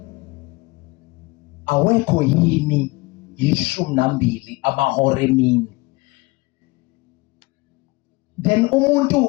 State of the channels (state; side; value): quieter; right; 23.6 dB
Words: awekho yini 12 amahora emini? Then umuntu